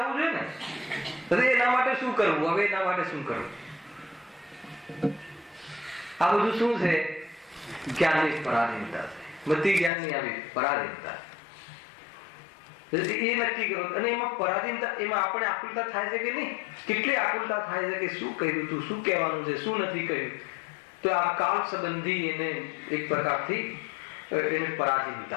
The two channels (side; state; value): right; drops out; at 9.9 s